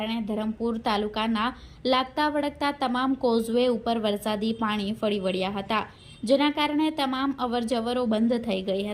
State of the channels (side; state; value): both; identical; correlation 1.00